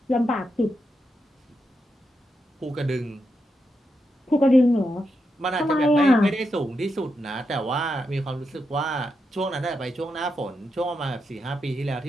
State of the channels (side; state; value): both; normal; correlation 0.85